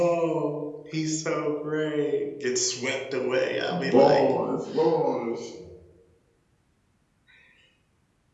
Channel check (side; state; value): both; identical; correlation 1.00